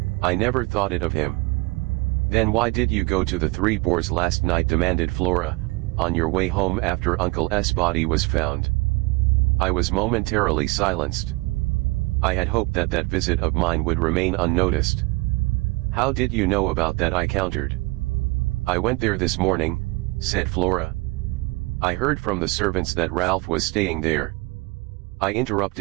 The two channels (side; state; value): left; quieter; 24.6 dB